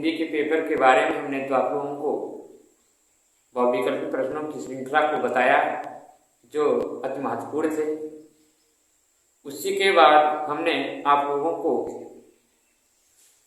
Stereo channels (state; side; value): identical; both; correlation 1.00